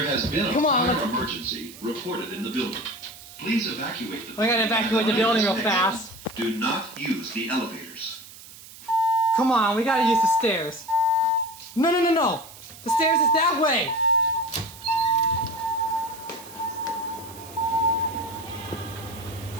has been a Come on, fire let's- emergency reported in the building. Please evacuate the We gotta evacuate the building real fast. Do not use the elevators. Come on, we gotta use the stairs. No. The stairs is that way.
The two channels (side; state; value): right; noise; hiss, 18 dB below the sound